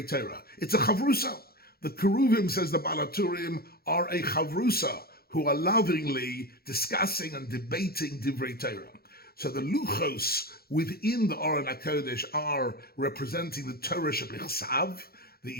Torah. It's a chavrusa. The keruvim, says the Baal HaTurim, are a chavrusa, who are lovingly discussing and debating divrei Torah. So the luchos within the Aron HaKodesh are representing the Torah shebichsav, the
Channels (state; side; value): late; right; 0.44 ms